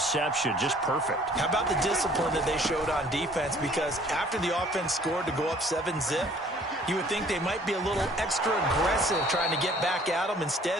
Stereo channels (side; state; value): both; normal; correlation 0.56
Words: Just perfect. How about the discipline that they showed on defense? Because after the offense scored to go up 7-zip, you would think they might be a little extra aggressive trying to get back at them.